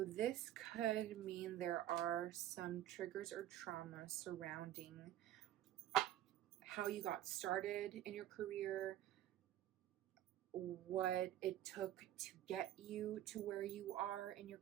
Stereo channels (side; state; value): left; quieter; 12.8 dB